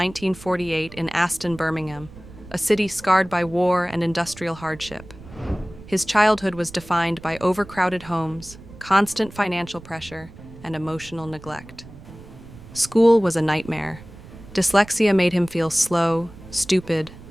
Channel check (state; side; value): noise; right; rumble, 18 dB below the sound